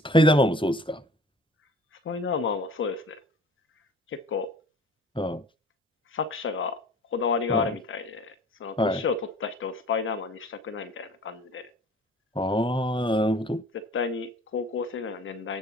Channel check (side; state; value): both; normal; correlation 0.47